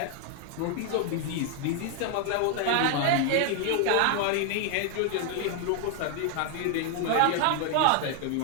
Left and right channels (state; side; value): different; both; correlation 0.00